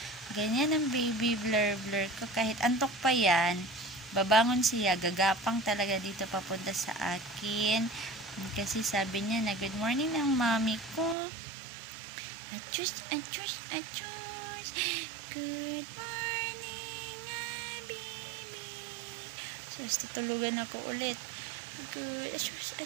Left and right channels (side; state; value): left; drops out; at 11.2 s